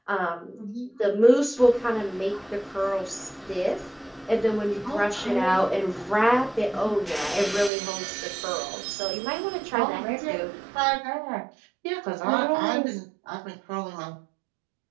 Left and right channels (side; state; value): left; drops out; at 7.7 s